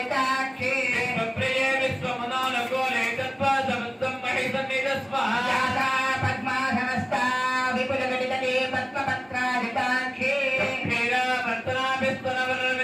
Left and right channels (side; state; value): both; identical; correlation 1.00